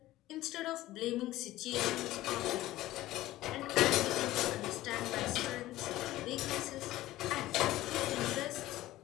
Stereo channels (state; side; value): quieter; right; 16.1 dB